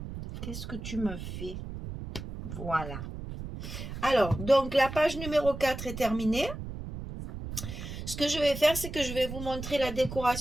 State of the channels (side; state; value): right; noise; rumble, 8 dB below the sound